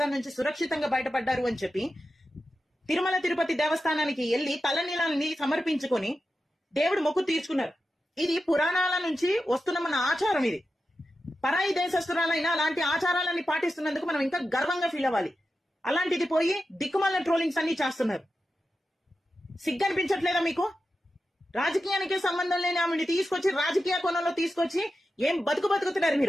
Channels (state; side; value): normal; both; correlation 0.91